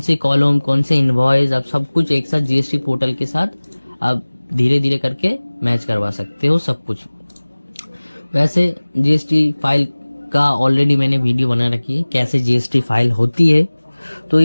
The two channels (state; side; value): inverted; both; correlation -1.00